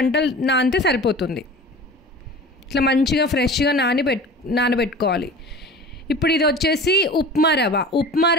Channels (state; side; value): normal; both; correlation 0.38